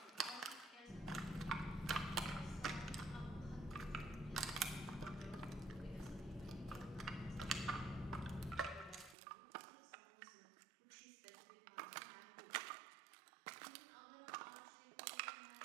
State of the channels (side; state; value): left; drops out; at 9.2 s